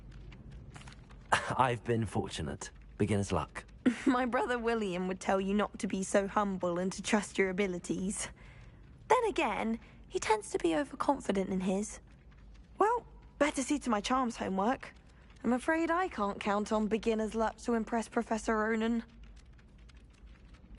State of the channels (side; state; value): both; identical; correlation 1.00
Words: I've been fortunate. Beginner's luck. My brother William would tell you not to be so humble and to trust your abilities. Then again, he tends to be overconfident in his. Well, better see to my charms homework. I'm afraid I can't count on beginner's luck to impress Professor Ronan.